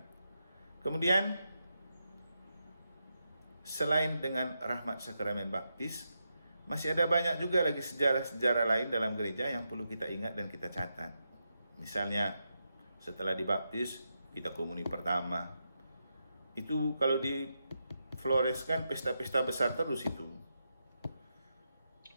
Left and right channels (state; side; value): inverted; both; correlation -0.85